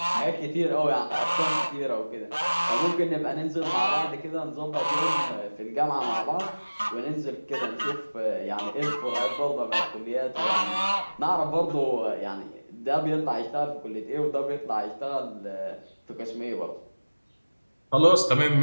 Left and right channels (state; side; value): inverted; both; correlation -1.00